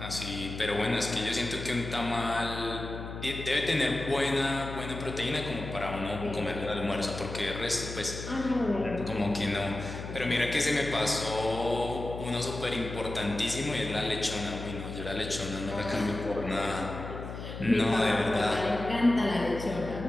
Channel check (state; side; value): noise; left; hum, 8 dB below the sound